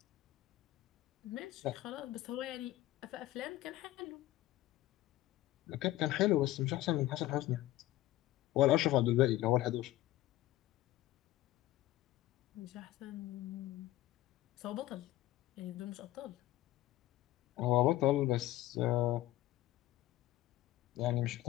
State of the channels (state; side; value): quieter; right; 15.5 dB